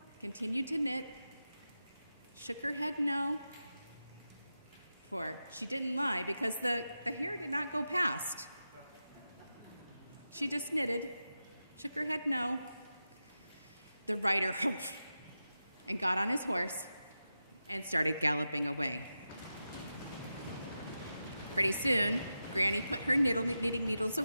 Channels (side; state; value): both; inverted; correlation -0.91